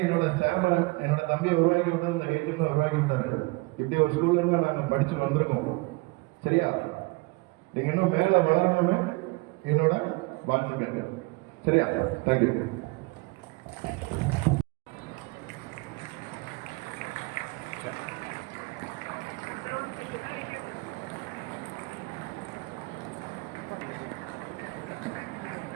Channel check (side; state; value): left; quieter; 26.0 dB